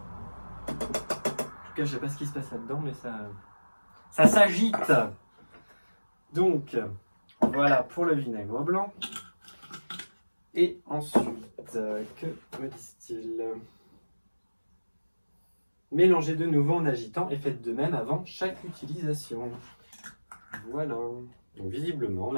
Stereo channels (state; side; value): inverted; both; correlation -1.00